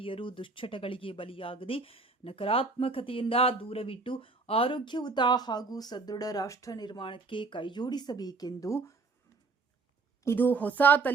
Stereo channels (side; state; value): left; quieter; 4.1 dB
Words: ದುಶ್ಚಟಗಳಿಗೆ ಬಲಿಯಾಗದೆ ನಕಾರಾತ್ಮಕತೆಯಿಂದ ದೂರವಿಟ್ಟು ಆರೋಗ್ಯಯುತ ಹಾಗೂ ಸದೃಢ ರಾಷ್ಟ್ರ ನಿರ್ಮಾಣಕ್ಕೆ ಕೈಜೋಡಿಸಬೇಕೆಂದು ಇದು ಹೊಸ